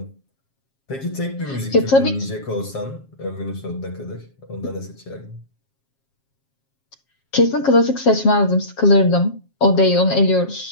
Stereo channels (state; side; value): late; right; 7.4 ms